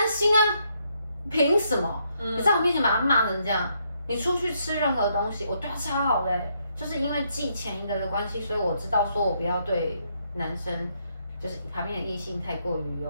心啊，凭什么？你在我面前把他骂成这样，你出去吃任何东西，我对他超好的就是因为记前一个的关系，所以我知道说我不要对男生，就是旁边的异性太过于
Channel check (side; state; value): both; inverted; correlation -0.75